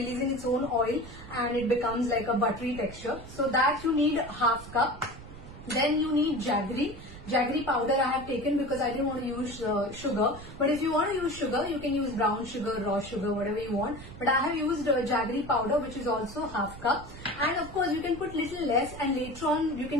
its own oil, and it becomes like a buttery texture. So that you need half cup. Then you need jaggery. Jaggery powder I have taken because I didn't want to use sugar. But if you want to use sugar, you can use brown sugar, raw sugar, whatever you want. But I have used jaggery powder, which is also half cup. And of course, you can put little less, and later on you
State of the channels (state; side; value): noise; right; rumble, 14 dB below the sound